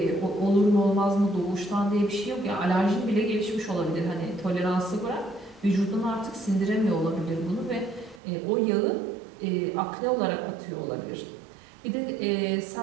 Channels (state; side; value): drops out; left; at 8.2 s